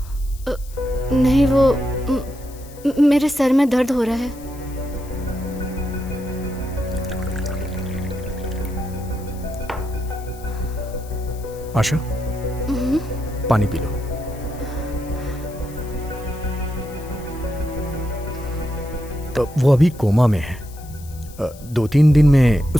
नहीं, वो मेरे सर में दर्द हो रहा है। आशा, पानी पी लो। तो वो अभी कोमा में है। 2-3 दिन में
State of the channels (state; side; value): noise; left; hiss, 21 dB below the sound